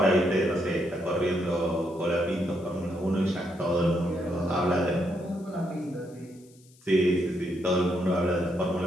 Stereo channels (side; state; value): left; noise; hiss, 28 dB below the sound